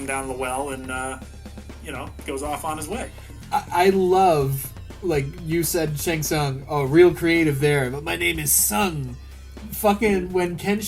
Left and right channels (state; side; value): identical; both; correlation 1.00